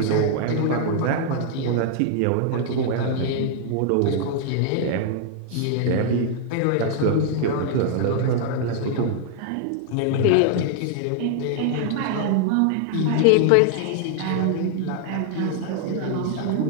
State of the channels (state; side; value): different; both; correlation -0.01